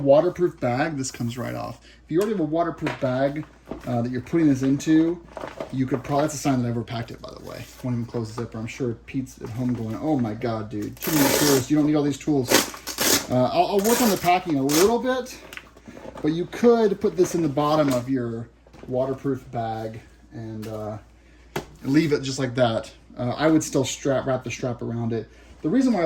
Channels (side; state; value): both; identical; correlation 1.00